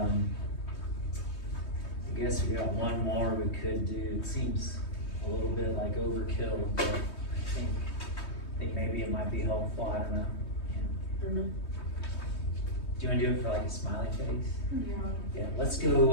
I guess we got one more we could do. It seems a little bit like overkill, but I think maybe it might be helpful. I don't know. Yeah. Do you want to do it for like a smiley face? Yeah. Yeah, let's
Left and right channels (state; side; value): late; right; 3.2 ms